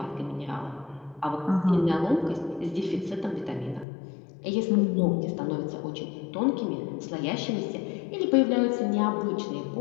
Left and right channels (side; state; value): right; drops out; at 3.9 s